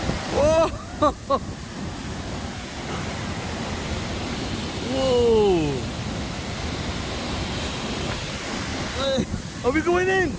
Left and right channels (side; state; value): both; identical; correlation 1.00